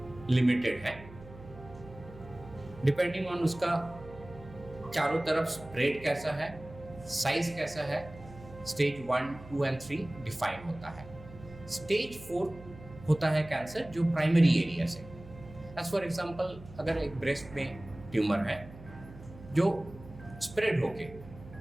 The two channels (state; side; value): noise; right; hum, 17 dB below the sound